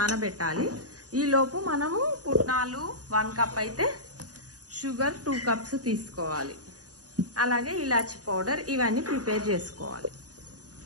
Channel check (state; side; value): late; left; 0.68 ms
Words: ఈ లోపు మనము పుట్నాలు 1 కప్ అయితే షుగర్ 2 కప్స్ తీసుకోవాలి. అలాగే ఇలాచి పౌడర్ ఇవన్నీ ప్రిపేర్ చేసుకోవాలి.